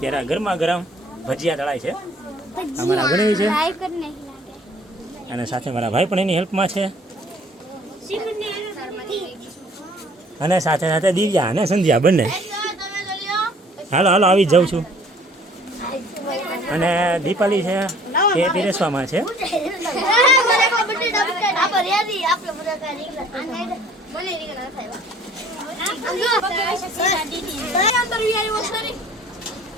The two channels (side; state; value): both; normal; correlation 0.55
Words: ગરમા ગરમ ભજીયા તળાય છે. અમારા ગણવી છે અને સાથે મારા ભાઈ પણ એની હેલ્પમાં છે અને સાથે સાથે દિવ્યા અને સંધ્યા બંને. હાલો હાલો આવી જ જાઉં છું. અને દીપાલી છે એ પીરેસવામાં છે.